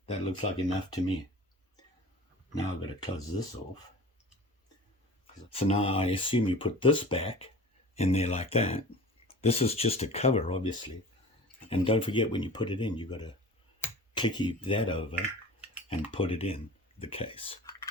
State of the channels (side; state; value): both; normal; correlation 0.39